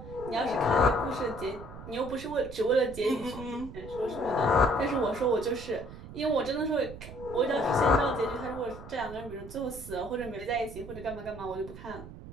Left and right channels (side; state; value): right; noise; rumble, 14 dB below the sound